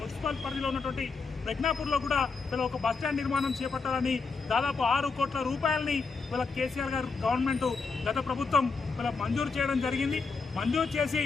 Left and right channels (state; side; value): quieter; right; 4.5 dB